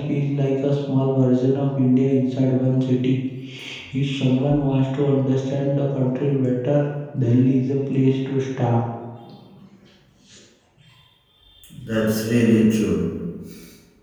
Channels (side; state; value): both; identical; correlation 1.00